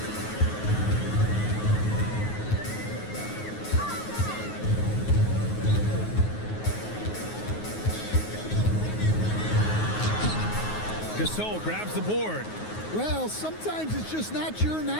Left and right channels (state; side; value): late; right; 9.4 ms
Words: Gasol grabs the board. Well, sometimes it's just not your